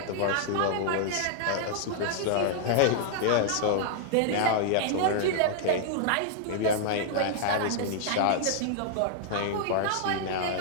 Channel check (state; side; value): different; both; correlation -0.01